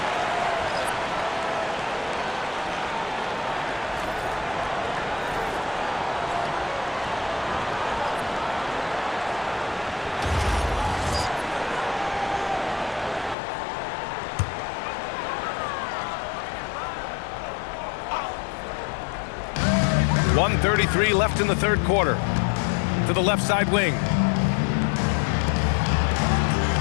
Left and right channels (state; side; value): drops out; right; at 13.4 s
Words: .133 left in the third quarter. To the left side wing.